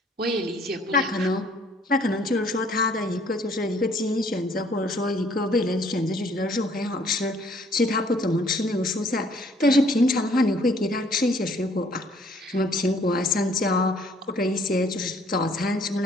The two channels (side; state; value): both; normal; correlation 0.61